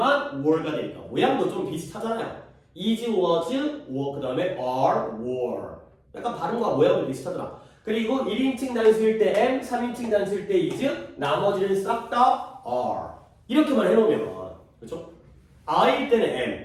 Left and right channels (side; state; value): both; identical; correlation 1.00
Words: were가 되니까. 모양도 좀 비슷하잖아요. is, was, were. 그 다음에 are, were. 약간 발음과 모양도 비슷하더라. 그리고 1인칭 단수일 때 am, 3인칭 단수일 때 is, 나머지는 싹 다 are. 이렇게만 해놓으면 그렇죠? I일 때는